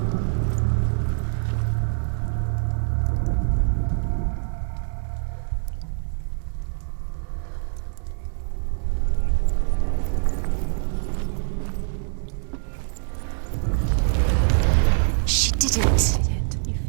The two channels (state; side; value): silent; left; digital silence